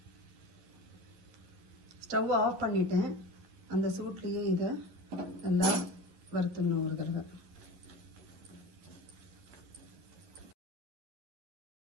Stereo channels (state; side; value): late; left; 11 ms